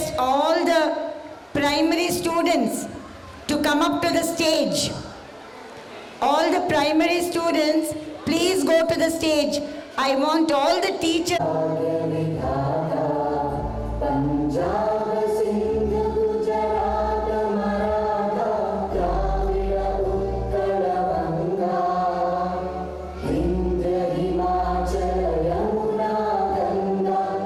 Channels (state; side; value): identical; both; correlation 1.00